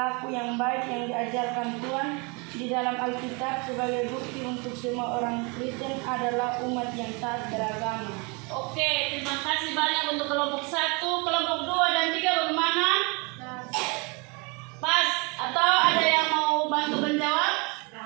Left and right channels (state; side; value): quieter; left; 30.5 dB